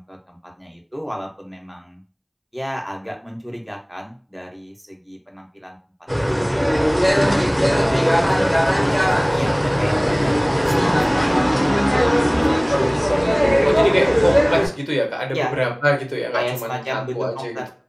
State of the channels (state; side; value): identical; both; correlation 1.00